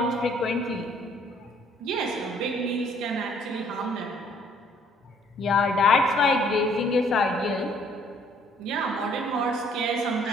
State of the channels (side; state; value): both; normal; correlation 0.62